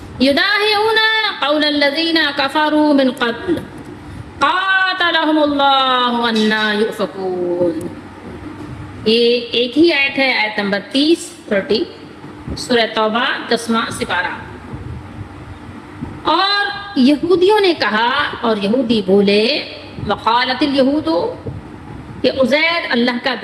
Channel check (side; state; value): both; identical; correlation 1.00